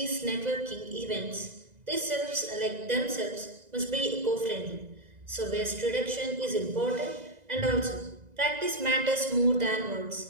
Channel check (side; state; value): left; late; 2.0 ms